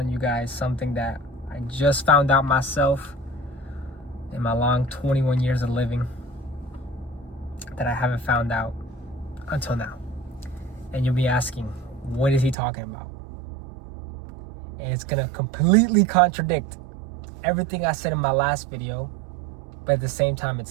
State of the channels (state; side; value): drops out; left; at 12.6 s